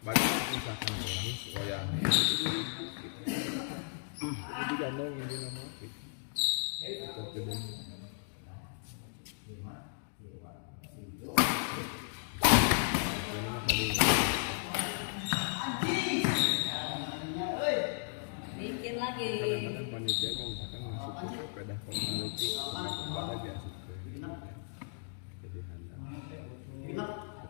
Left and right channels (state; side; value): silent; right; digital silence